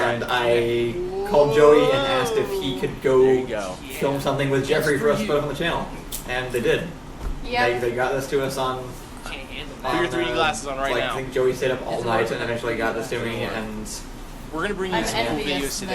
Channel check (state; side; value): identical; both; correlation 1.00